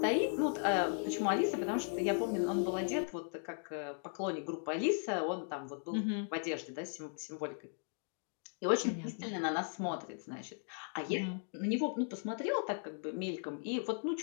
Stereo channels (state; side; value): silent; right; 53 dB below the other